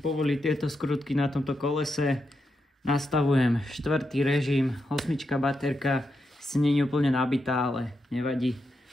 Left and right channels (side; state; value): both; normal; correlation 0.85